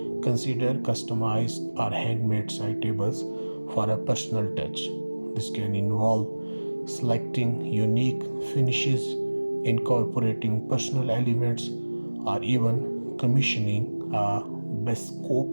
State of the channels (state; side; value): inverted; both; correlation -1.00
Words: Consider customized or handmade side tables for a personal touch. This can involve selecting unique finishes, incorporating personal elements, or even commissioning a